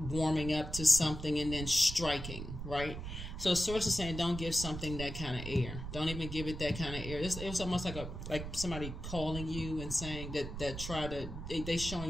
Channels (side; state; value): right; noise; rumble, 7 dB below the sound